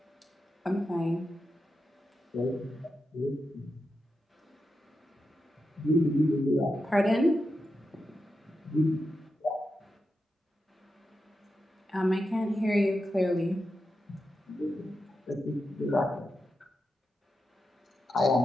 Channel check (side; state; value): both; normal; correlation 0.88